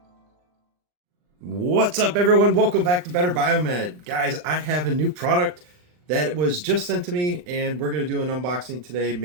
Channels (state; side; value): late; left; 39 ms